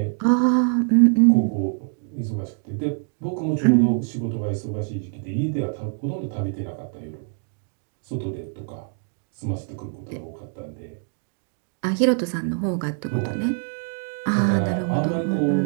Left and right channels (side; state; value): left; silent; 56 dB below the other